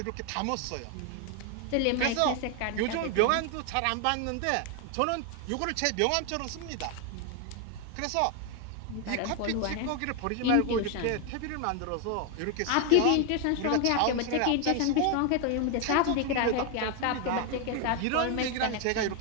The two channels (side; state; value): both; different; correlation 0.01